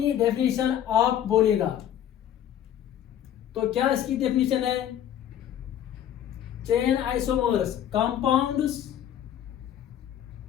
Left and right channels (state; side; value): quieter; right; 10.6 dB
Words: डेफिनेशन आप बोलेगा, तो क्या इसकी डेफिनेशन है? Chain isomers compounds